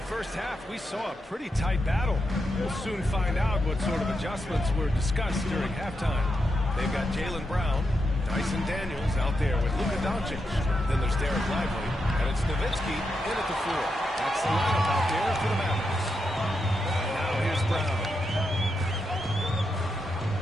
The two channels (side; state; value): both; normal; correlation 0.85